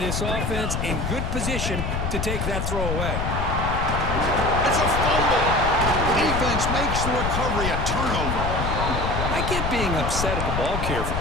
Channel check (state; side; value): noise; left; rumble, 2 dB below the sound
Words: this offense in good position to take that throw away. It's a fumble. Defense makes the recovery a turnover. I get being upset at the ball carrier for